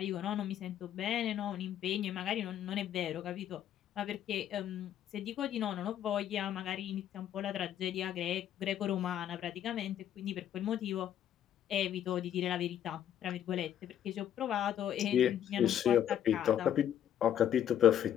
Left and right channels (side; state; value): right; quieter; 10.5 dB